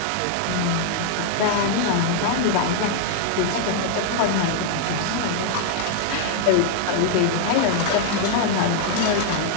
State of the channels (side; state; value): both; different; correlation 0.00